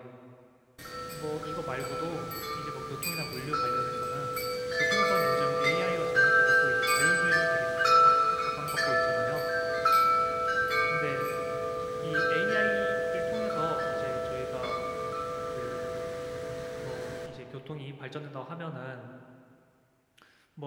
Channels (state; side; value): identical; both; correlation 1.00